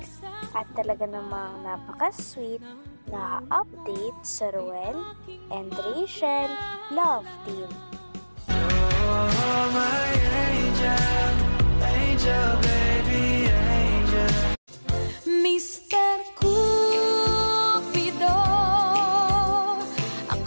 at talaga namang napaka-sweet na update sa Ruel and Rachel Love Team. Oh, my angel, angel, baby, angel. Mr. Cupido,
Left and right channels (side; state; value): both; inverted; correlation -1.00